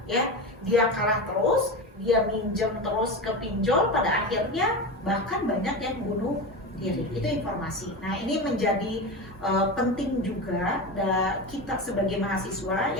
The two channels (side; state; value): both; normal; correlation 0.23